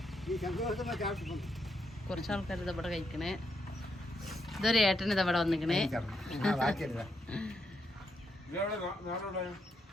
കുറച്ച് ആൾക്കാർ ഇതവിടെ കഴിക്കണേ. ഇതൊരു ഏട്ടൻ ഇതവിടെ വന്നിക്കണേ.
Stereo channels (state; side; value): normal; both; correlation 0.80